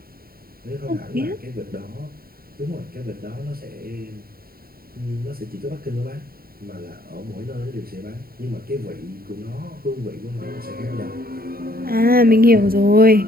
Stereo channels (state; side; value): late; left; 0.43 ms